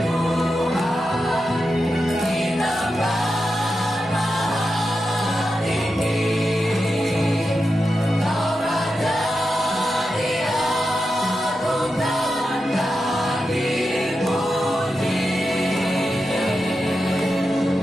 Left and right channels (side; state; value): both; normal; correlation 0.89